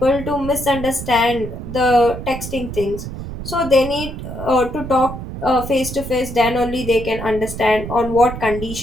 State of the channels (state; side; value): noise; right; rumble, 9 dB below the sound